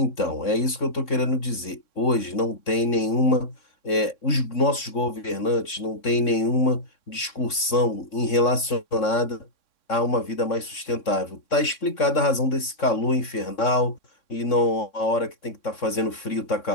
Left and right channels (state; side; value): late; right; 3.6 ms